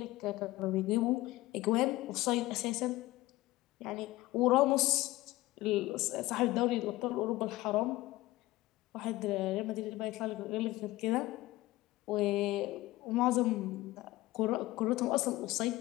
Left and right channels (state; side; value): quieter; right; 18.1 dB